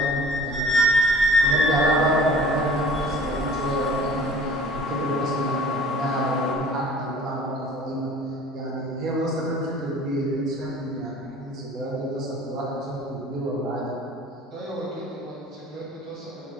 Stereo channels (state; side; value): normal; both; correlation 0.47